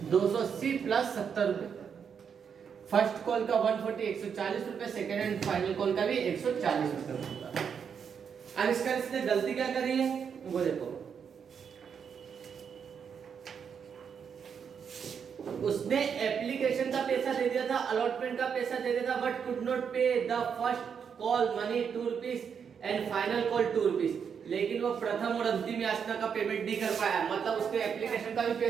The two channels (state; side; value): quieter; left; 7.0 dB